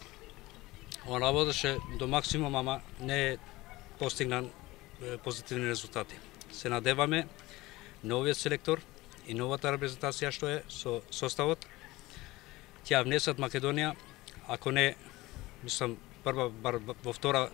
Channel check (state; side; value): quieter; right; 19.6 dB